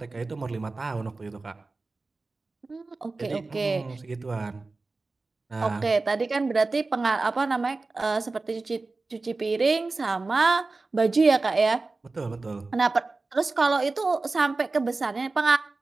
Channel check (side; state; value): left; quieter; 3.6 dB